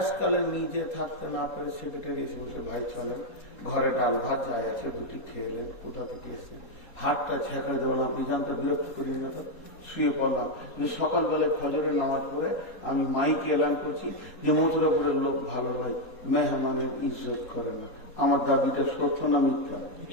নিজে থাকতে না পারে সেক্রেটারি এসে বলছে ভাই চলেন, ঘরে ডাল ভাত যাই আছে দুটি খেয়ে এলেন, কোথা থেকে এসছে, হাতটা ছেঁকড়ে দেবো না, আপনি জানতে বিরক্ত করি না। তো শুয়ে পড়লাম। সকালবেলায় ফজরের নামাজ পড়ে আমি মাইকে এলান করছি যে মথুরাপুরের লোক ভালো ভাই, মেহমানের ইজ্জত করে না। আমার দাবিটা সত্য না মিথ্যা?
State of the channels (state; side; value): late; right; 4.2 ms